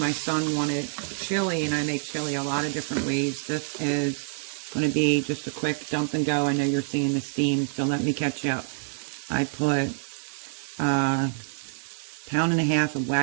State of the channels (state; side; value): silent; left; digital silence